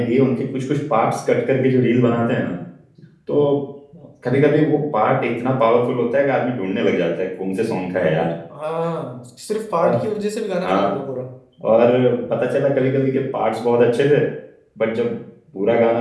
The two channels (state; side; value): identical; both; correlation 1.00